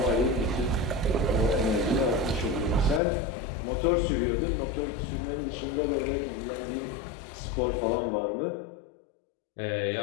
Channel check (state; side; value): drops out; right; at 3.0 s